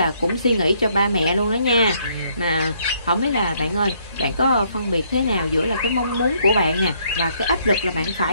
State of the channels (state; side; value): inverted; both; correlation -0.68